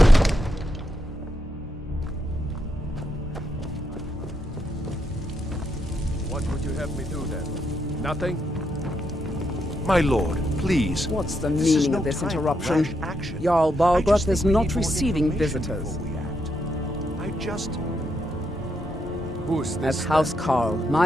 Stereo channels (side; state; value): both; normal; correlation 0.80